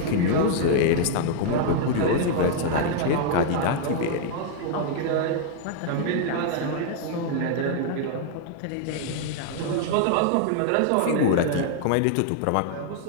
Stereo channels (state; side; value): different; both; correlation 0.00